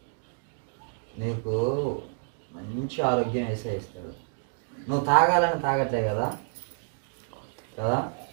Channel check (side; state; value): left; silent; digital silence